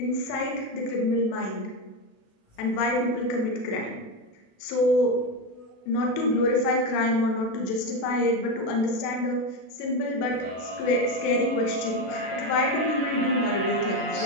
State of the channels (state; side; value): late; right; 36 ms